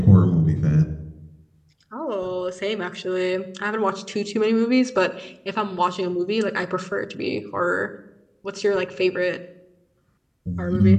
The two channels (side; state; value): both; identical; correlation 1.00